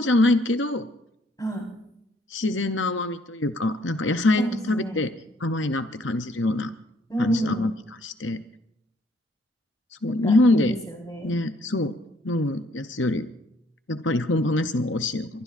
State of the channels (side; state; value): both; normal; correlation 0.64